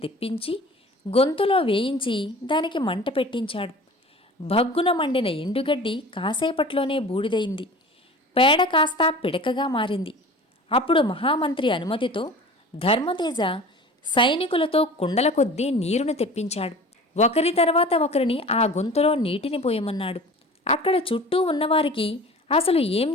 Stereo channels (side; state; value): both; normal; correlation 0.40